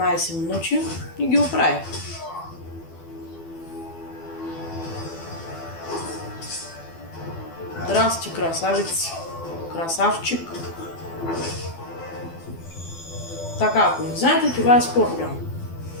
минути и ги оправих. Здрасти, красавец. Красавчик. Така, ако не знаете, това е Скорпион.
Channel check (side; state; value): right; late; 12 ms